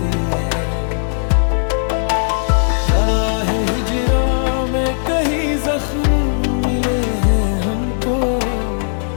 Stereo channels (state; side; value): silent; right; digital silence